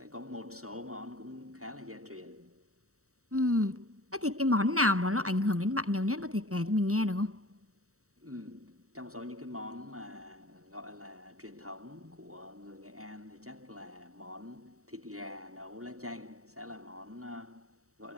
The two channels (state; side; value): late; left; 0.65 ms